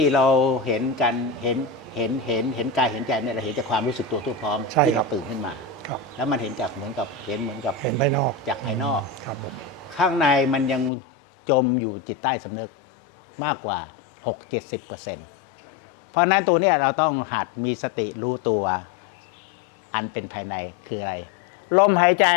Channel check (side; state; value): right; drops out; at 10.9 s